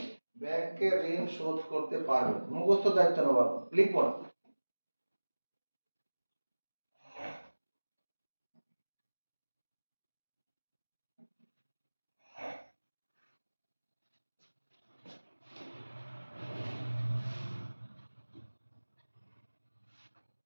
ব্যাংকের ঋণ শোধ করতে পারবেন। মুখস্থ দায়িত্ব নেওয়া, লিখব না।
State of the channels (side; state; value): both; inverted; correlation -1.00